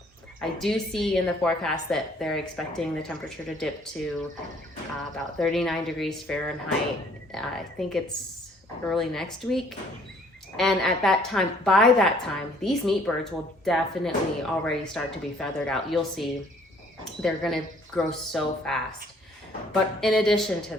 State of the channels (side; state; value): both; normal; correlation 0.60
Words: I do see in the forecast that they're expecting the temperature to dip to about 39 degrees Fahrenheit. I think it's early next week. And at that time, by that time, these meat birds will definitely already start to be feathered out. You'll see they're gonna grow so fast. But in addition to